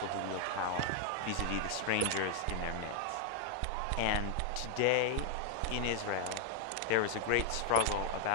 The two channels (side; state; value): both; different; correlation 0.00